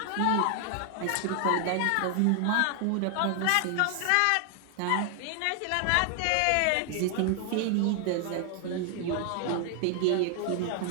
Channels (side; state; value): both; different; correlation 0.00